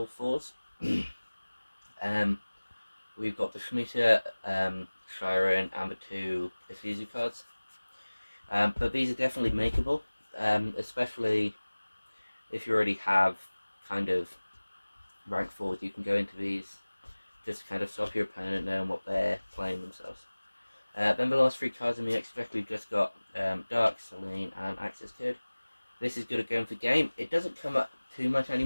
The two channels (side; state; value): both; inverted; correlation -1.00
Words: 4s. We've got the Shmita, Shiren, and the 2 Isuzu cards. But these are definitely makeable, especially if you already have kind of rank 4s. You can go into these, just kind of stop your opponent knowing what they're playing themselves. Then the last 3 cards in the extra deck, we've just got Dark, Selene, and Access Code. This is good at going for game. It doesn't come up too much